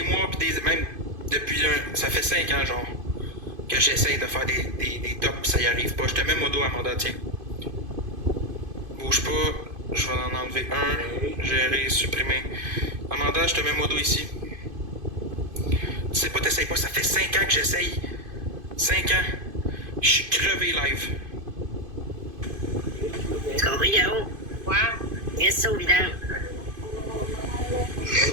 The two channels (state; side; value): late; left; 2.5 ms